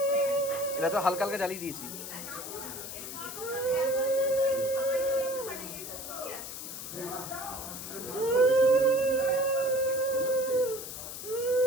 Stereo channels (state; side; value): noise; left; hiss, 9 dB below the sound